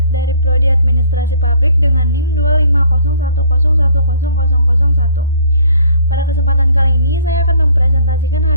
dari Prodi Administrasi Publik dengan NIM 25010101001. Pada kesempatan kali ini saya akan mempresentasikan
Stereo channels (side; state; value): both; inverted; correlation -0.57